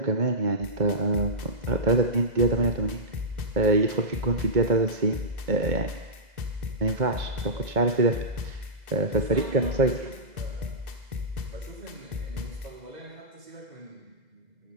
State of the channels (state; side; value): late; left; 2.0 ms